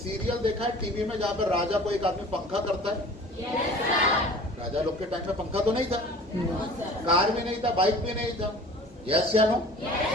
देखा है टीवी में जहाँ पर राजा को एक आदमी पंखा करता है? राजा लोग के टाइम में पंखा तो नहीं था, कार भी नहीं था, बाइक भी नहीं था। यस या नो?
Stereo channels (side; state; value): both; normal; correlation 0.44